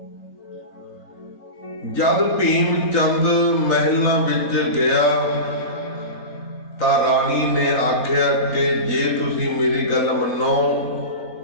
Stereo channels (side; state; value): right; late; 3.9 ms